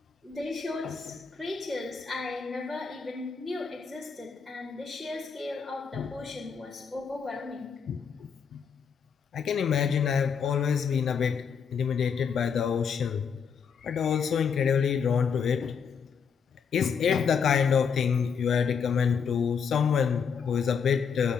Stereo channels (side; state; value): right; quieter; 6.5 dB